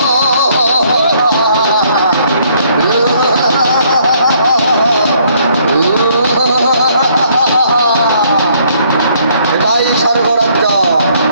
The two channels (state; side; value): inverted; both; correlation -0.66